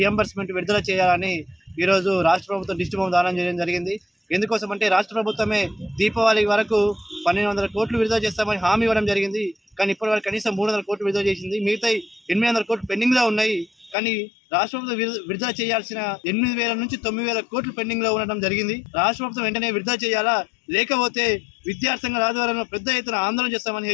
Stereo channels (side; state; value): right; drops out; at 14.0 s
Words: విడుదల చేయాలని ఈరోజు రాష్ట్ర ప్రభుత్వం దిష్టి బొమ్మ దానం చేయడం జరిగింది. ఎందుకోసం అంటే రాష్ట్ర ప్రభుత్వమే దీపావళి వరకు 1200 కోట్లు విడుదల చేస్తామని హామీ ఇవ్వడం జరిగింది. కానీ ఇప్పటివరకు కనీసం 300 కోట్లు విడుదల చేసింది. మిగతా 800 కోట్లు పెండింగ్లో ఉన్నాయి. కానీ రాష్ట్ర ప్రభుత్వం విడుదల చేయాల్సిన 8,000 నుంచి 9,000 కోట్లు పెండింగ్లో ఉండడం జరిగింది. రాష్ట్ర ప్రభుత్వం వెంటనే విడుదల చేయాలా, లేకపోతే విద్యార్థి సంఘాల ఆధ్వర్యంలో పెద్ద ఎత్తున ఆందోళన చేస్తామని